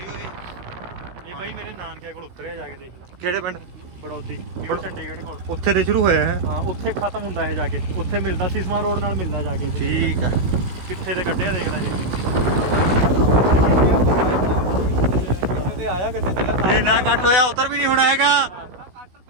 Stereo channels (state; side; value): late; left; 16 ms